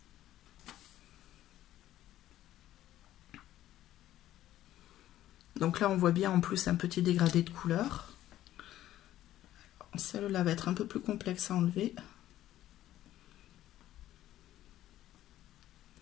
Donc là, on voit bien en plus un petit dégradé de couleur. Celle-là va être un peu plus complexe à enlever.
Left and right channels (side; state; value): right; quieter; 13.4 dB